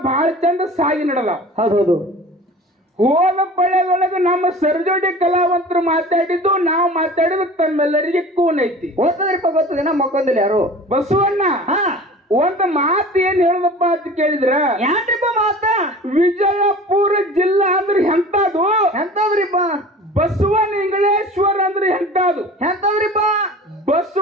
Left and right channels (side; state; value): both; normal; correlation 0.40